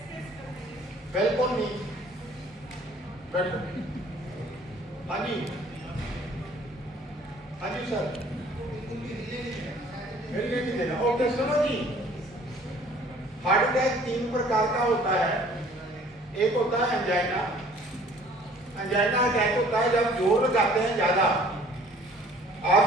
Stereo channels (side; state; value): both; normal; correlation 0.54